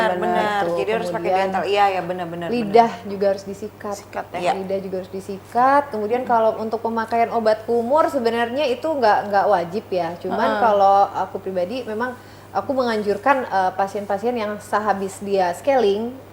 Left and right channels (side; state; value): both; identical; correlation 1.00